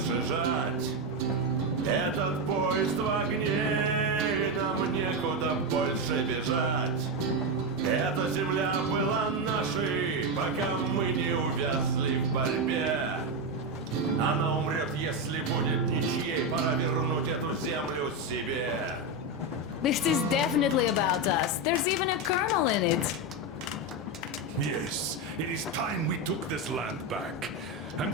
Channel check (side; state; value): both; normal; correlation 0.09